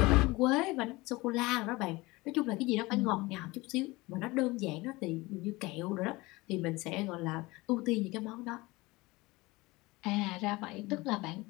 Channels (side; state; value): right; quieter; 21.9 dB